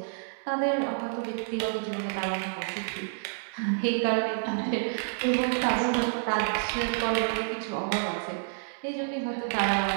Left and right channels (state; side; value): silent; left; digital silence